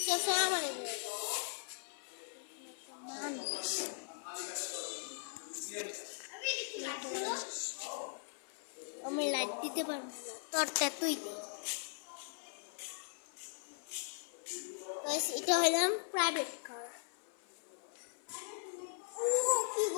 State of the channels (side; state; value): right; silent; 51 dB below the other